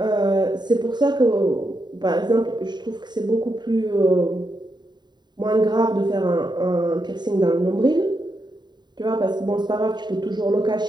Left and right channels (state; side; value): late; left; 0.21 ms